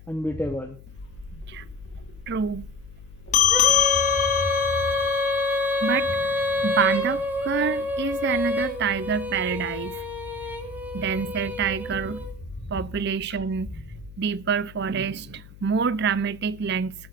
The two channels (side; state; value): left; noise; hum, 20 dB below the sound